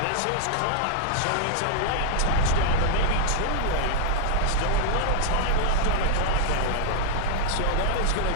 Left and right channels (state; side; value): different; both; correlation -0.01